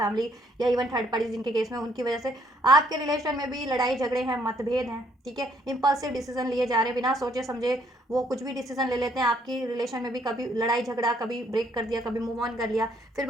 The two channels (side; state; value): both; normal; correlation 0.67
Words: या इवन थर्ड पार्टी जिनके केस में, उनकी वजह से आपके रिलेशन में भी लड़ाई झगड़े हैं, मतभेद हैं, ठीक है, इम्पल्सिव डिसीजन लिए जा रहे हैं, बिना सोचे समझे वो कुछ भी डिसीजन ले लेते हैं। आपकी रिलेशन में भी कभी लड़ाई झगड़ा, कभी ब्रेक कर दिया, कभी मूव ऑन कर लिया, फिर